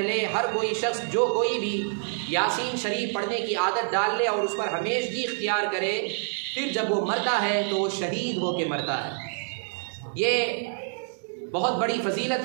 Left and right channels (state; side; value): silent; left; digital silence